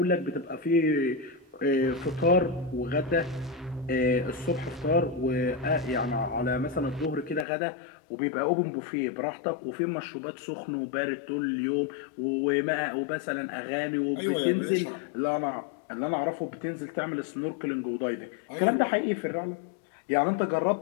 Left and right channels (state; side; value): drops out; right; at 7.5 s